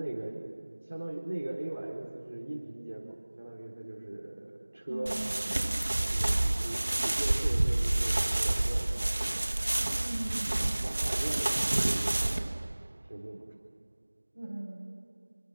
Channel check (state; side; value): inverted; both; correlation -1.00